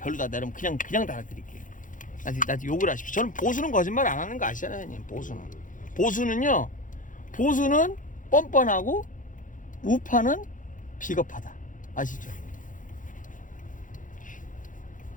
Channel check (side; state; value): right; late; 0.38 ms